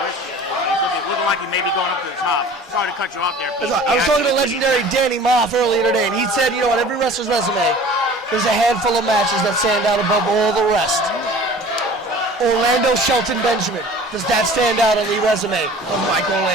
Looking like he may be going up to the top. Sorry to cut you off there. I was talking to legendary Danny Moff earlier today, and he said, you know, on every wrestler's resume, there's a handful of matches that stand out above all the rest. Orlando Shelton Benjamin. Does that stand out on the resume of Mike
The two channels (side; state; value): both; normal; correlation 0.44